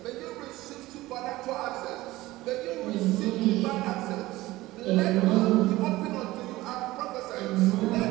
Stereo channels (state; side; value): quieter; left; 18.1 dB